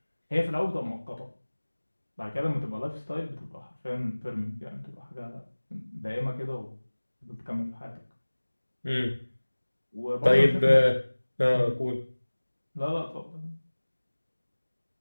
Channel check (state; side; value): inverted; both; correlation -1.00